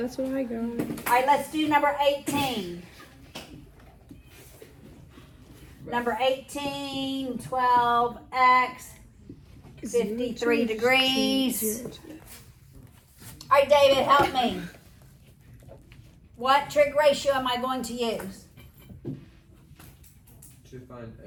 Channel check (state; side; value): identical; both; correlation 1.00